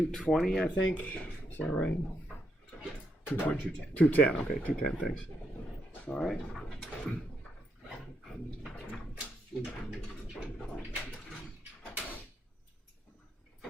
I think. Is that right? 210. 210. Okay, 210. Thanks. All right.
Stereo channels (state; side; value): normal; both; correlation 0.79